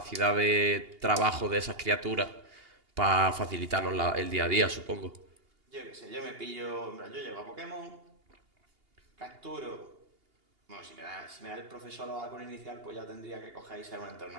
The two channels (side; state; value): left; late; 2.8 ms